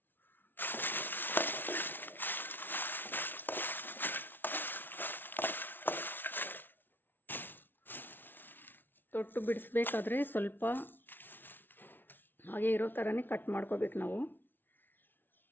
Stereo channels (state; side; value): late; right; 0.097 ms